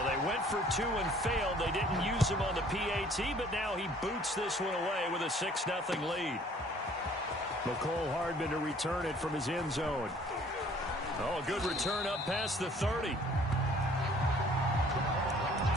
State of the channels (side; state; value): both; normal; correlation 0.56